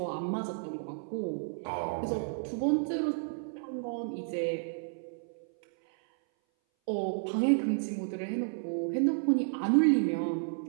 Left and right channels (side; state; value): left; silent; 57 dB below the other